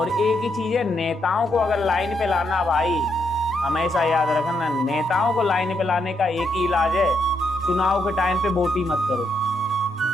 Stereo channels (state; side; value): normal; both; correlation 0.78